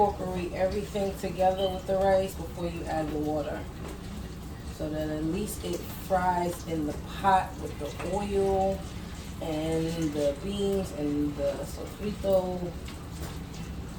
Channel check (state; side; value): identical; both; correlation 1.00